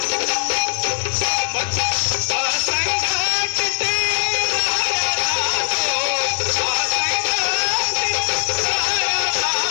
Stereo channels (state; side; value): silent; right; digital silence